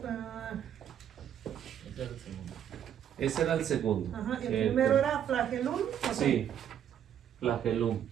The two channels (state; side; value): quieter; left; 9.6 dB